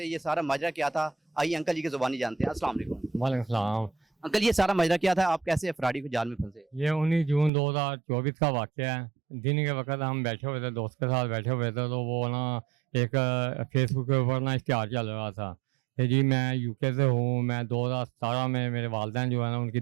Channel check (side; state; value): left; drops out; at 7.5 s